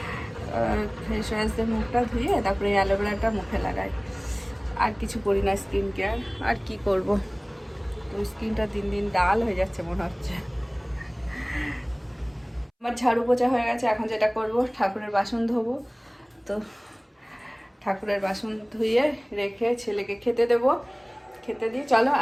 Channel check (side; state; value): both; identical; correlation 1.00